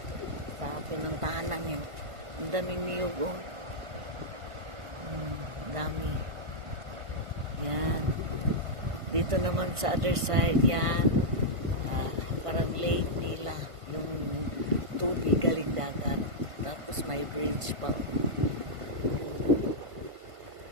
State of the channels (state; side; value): late; left; 1.5 ms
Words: sa pinuntahan namin. Ang daming niyog, oh. Dami. Yan. Dito naman sa other side, yan. Parang lake nila. Yung tubig galing dagat. Tapos may bridge pa.